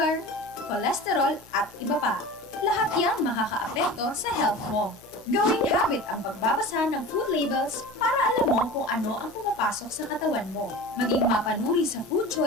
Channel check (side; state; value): both; normal; correlation 0.35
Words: cholesterol at iba pa. Lahat yan makakaapekto sa health mo. Gawing habit ang pagbabasa ng food labels para alam mo kung ano ang pumapasok sa katawan mo. Maging mapanuri sa food